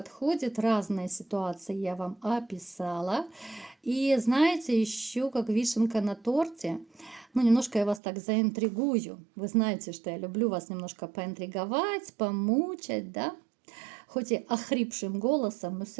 Разные ситуации я вам описала. И знаете, еще как вишенка на торте, ну, немножко я вас так заинтригую. Вы знаете, что я люблю вас немножко поинтриговать, помучать, да? Хоть и охрипшим голосом, но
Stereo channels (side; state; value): left; drops out; at 8.0 s